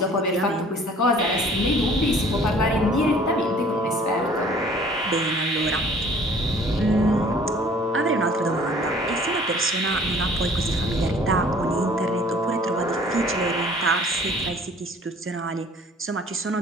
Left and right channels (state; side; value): normal; both; correlation 0.52